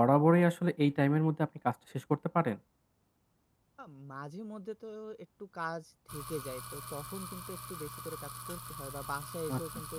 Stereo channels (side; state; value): both; identical; correlation 1.00